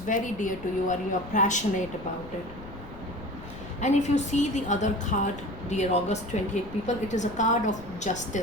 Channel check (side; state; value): left; noise; rumble, 15 dB below the sound